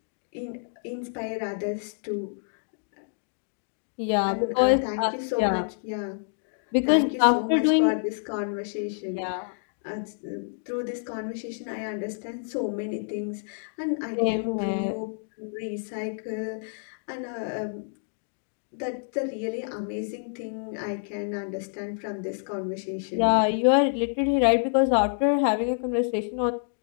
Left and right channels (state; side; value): silent; right; digital silence